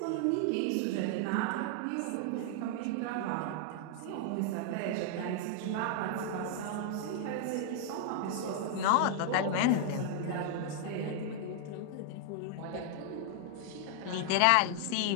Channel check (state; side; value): different; both; correlation 0.00